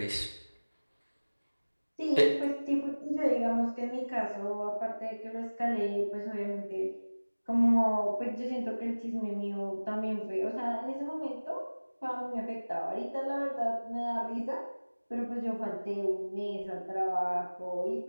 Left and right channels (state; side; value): inverted; both; correlation -1.00